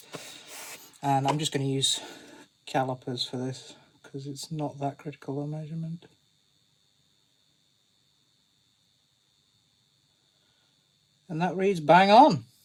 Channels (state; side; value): identical; both; correlation 1.00